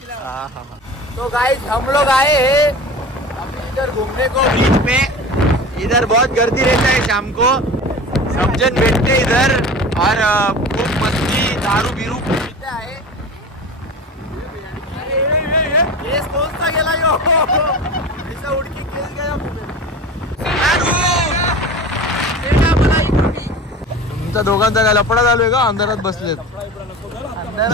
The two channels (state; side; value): normal; both; correlation 0.35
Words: तो गाइस हम लोग आए हैं अभी इधर घूमने को बीच में. इधर बहुत गर्दी रहता है शाम को. सब जन बैठते इधर और खूब मस्ती दारू बिरू पीते आहे. केस कोणता गेला यो? ऐसा उडकी केस गया. तुमचा दोघांचा काय लफडा चालू आहे का? अंधारात बसलेत.